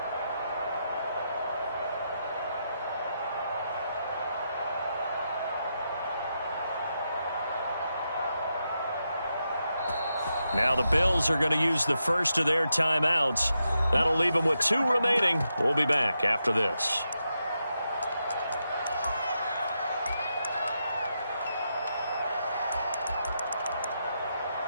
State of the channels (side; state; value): both; inverted; correlation -0.85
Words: Now the Bills are going to use the first of their timeouts. That'll leave them with 2 remaining. We'll be back after this.